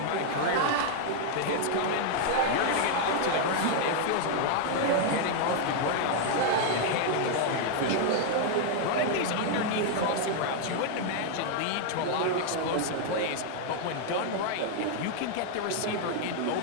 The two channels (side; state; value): both; different; correlation 0.00